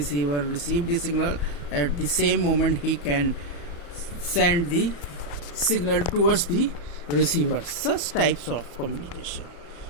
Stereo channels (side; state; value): right; late; 34 ms